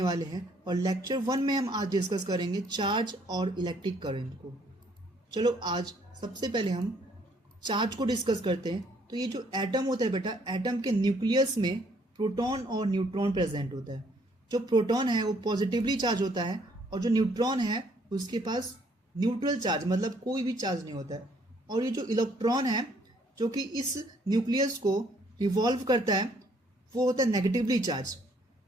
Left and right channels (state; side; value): normal; both; correlation 0.65